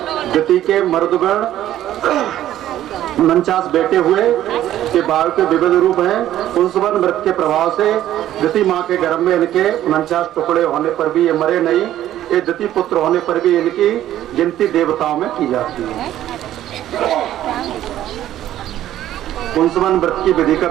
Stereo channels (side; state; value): left; quieter; 12.6 dB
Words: दिति के मर्दगण 49 बेटे हुए के बाल के विविध रूप हैं। पुंसवन व्रत के प्रभाव से दिति माँ के गर्भ में इनके 49 टुकड़े होने पर भी ये मरे नहीं। ये दिति पुत्र होने पर भी इनकी गिनती देवताओं में की जाती है। पुंसवन व्रत की विधि का